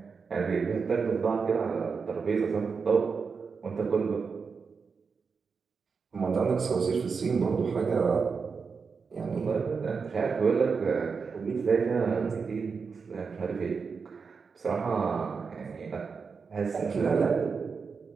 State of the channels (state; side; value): quieter; left; 5.3 dB